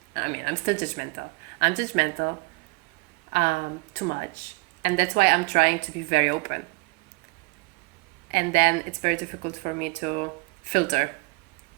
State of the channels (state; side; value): quieter; left; 28.6 dB